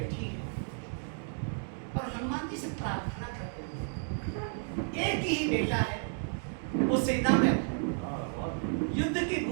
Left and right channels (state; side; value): silent; left; 56 dB below the other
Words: है और हनुमान जी से प्रार्थना करते हैं। एक ही बेटा है, वो सेना में है, युद्ध की